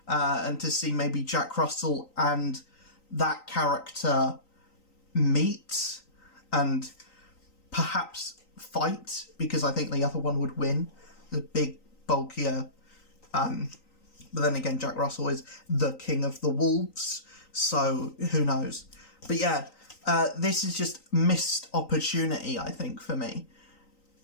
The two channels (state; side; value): late; right; 3.9 ms